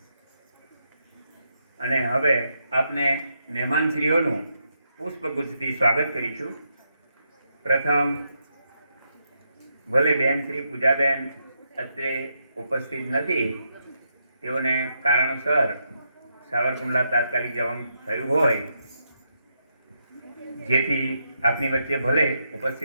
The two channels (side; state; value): both; inverted; correlation -0.81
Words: અને હવે આપને મહેમાનશ્રીઓનું પુષ્પગુચ્છથી સ્વાગત કરીશું. પ્રથમ ભલે બેન શ્રી પૂજાબેન અત્રે ઉપસ્થિત નથી, તેઓને કારણોસર સાવરકુંડલા તાત્કાલિક જવાનું થયું હોય, જેથી આપની વચ્ચે ભલે